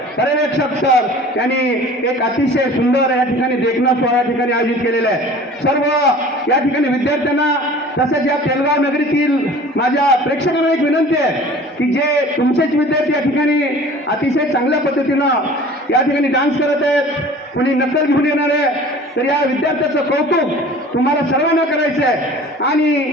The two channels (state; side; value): normal; both; correlation 0.44